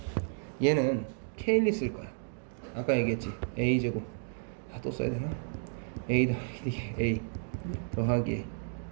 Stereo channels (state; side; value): silent; left; digital silence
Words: 얘는 케일리 쓸 거야. 아까 얘기했지. a제곱. 아, 또 써야 되나? a 더하기 a 더하기